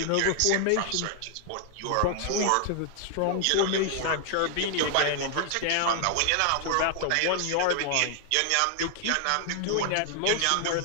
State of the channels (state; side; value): different; both; correlation 0.00